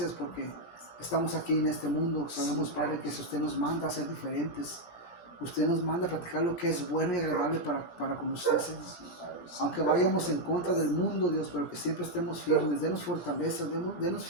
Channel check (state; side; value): late; right; 17 ms